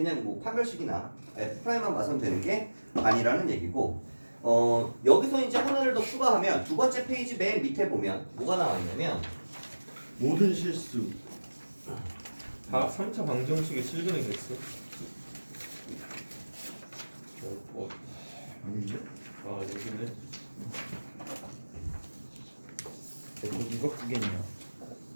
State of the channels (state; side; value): inverted; both; correlation -1.00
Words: 뭐 판별식이나 F'만 봐서는 되는 게 아니라는 얘기고 여기서 이제 하나를 더 추가하면 두 번째 페이지 맨 밑에 보면 뭐가 나와 있냐면 모든 실수. 3차 방정식의 실근의 개수. 아닌데? 여기네. 이거 크겠냐?